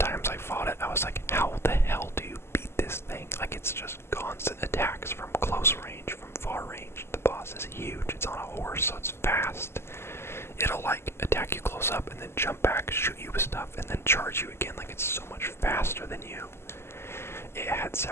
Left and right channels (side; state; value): right; late; 0.12 ms